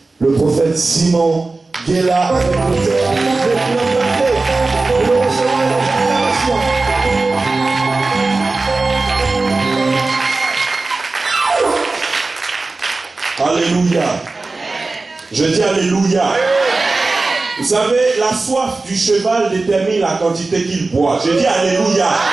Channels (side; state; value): left; quieter; 3.6 dB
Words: le prophète Simon Guéla, avec Alléluia. Je dis Alléluia. Vous savez, la soif du cheval détermine la quantité qu'il boit. Je dis Alléluia.